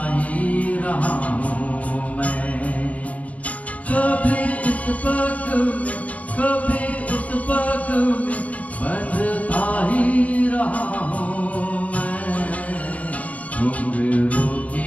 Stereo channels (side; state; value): right; late; 0.068 ms